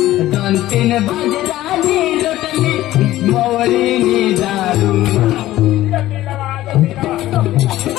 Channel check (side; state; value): right; quieter; 15.2 dB